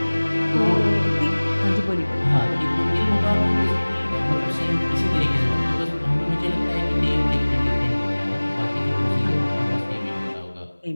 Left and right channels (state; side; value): inverted; both; correlation -1.00